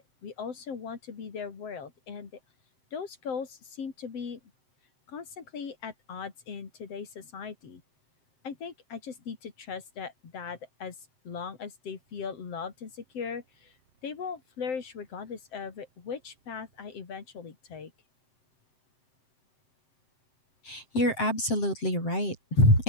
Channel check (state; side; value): late; right; 7.7 ms